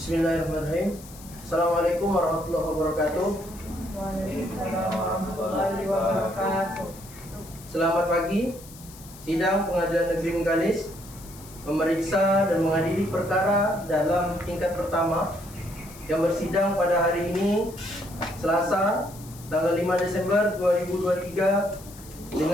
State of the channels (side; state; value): left; noise; hiss, 19 dB below the sound